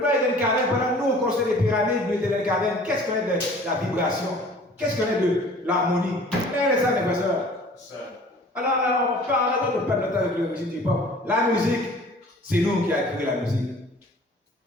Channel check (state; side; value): normal; both; correlation 0.49